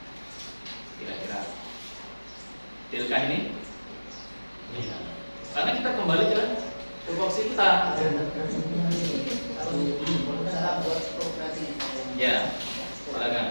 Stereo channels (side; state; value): both; inverted; correlation -1.00